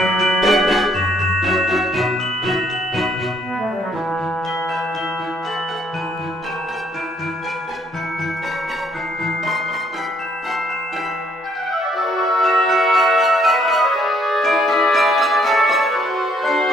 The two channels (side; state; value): both; normal; correlation 0.67